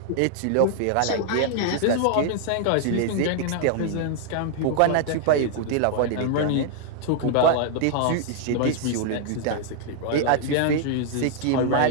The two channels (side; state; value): both; different; correlation -0.01